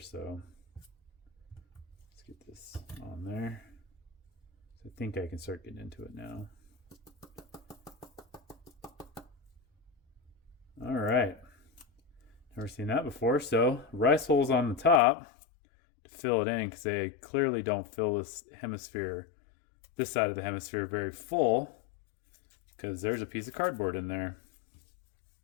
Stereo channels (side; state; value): right; drops out; at 15.0 s